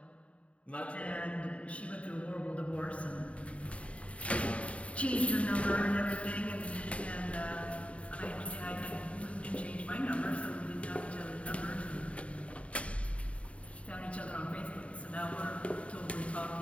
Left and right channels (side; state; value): right; late; 0.064 ms